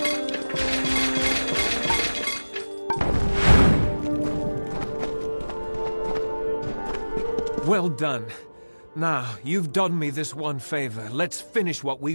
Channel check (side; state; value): both; inverted; correlation -1.00